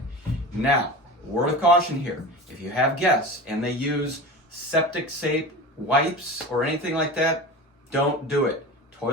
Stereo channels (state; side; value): normal; both; correlation 0.31